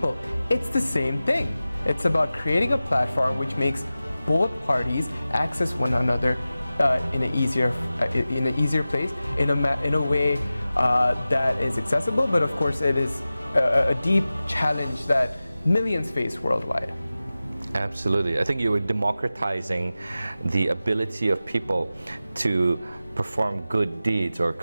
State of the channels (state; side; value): inverted; both; correlation -0.95